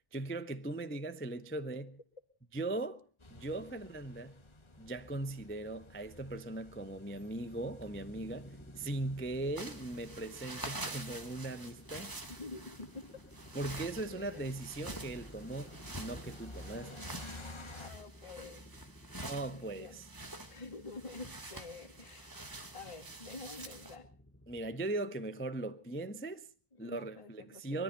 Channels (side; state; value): right; late; 1.0 ms